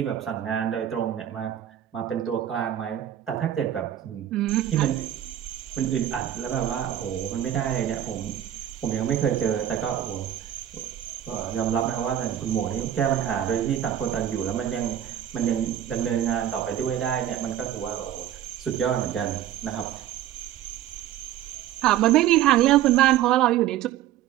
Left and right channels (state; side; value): quieter; left; 11.2 dB